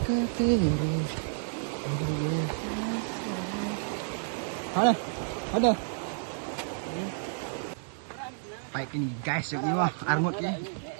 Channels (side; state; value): left; silent; digital silence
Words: Ada. Baik ini guys, ini wah armut ni.